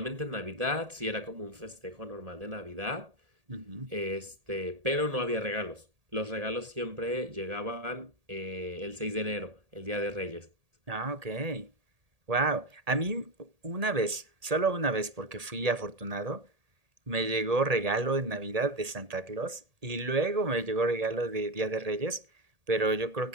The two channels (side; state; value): left; late; 1.8 ms